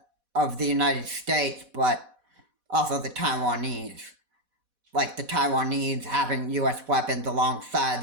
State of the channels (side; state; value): left; late; 4.1 ms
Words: of the United States, but also the Taiwanese. Like the Taiwanese having U.S. weapons alongside